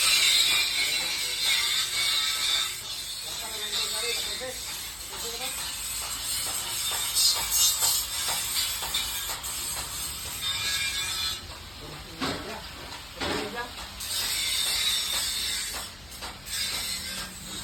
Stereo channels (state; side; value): noise; left; hum, 22 dB below the sound